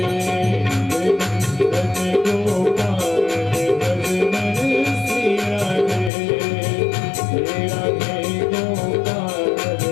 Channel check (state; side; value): drops out; right; at 6.1 s